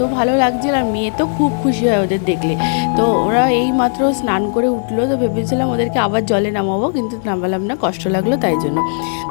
ভালো লাগছিল, আর মেয়ে তো খুব খুশি হয় ওদের দেখলে। তো ওরা এই মাত্র স্নান করে উঠলো, তো ভেবেছিলাম ওদেরকে আবার জলে নামাবো, কিন্তু নামালাম না, কষ্ট লাগলো তাই জন্য।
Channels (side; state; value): right; silent; digital silence